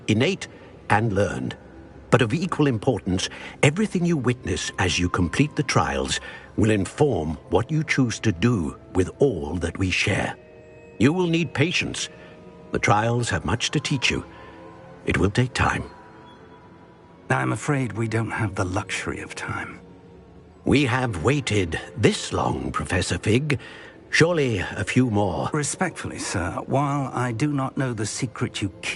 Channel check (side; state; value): both; identical; correlation 1.00